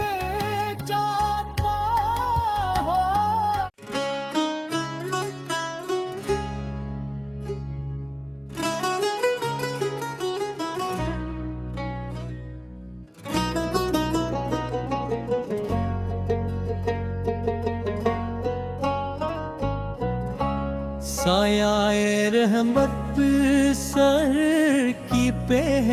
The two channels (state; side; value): identical; both; correlation 1.00